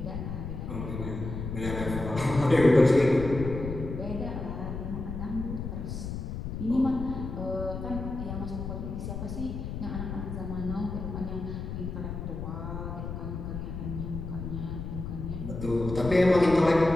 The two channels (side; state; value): left; noise; rumble, 6 dB below the sound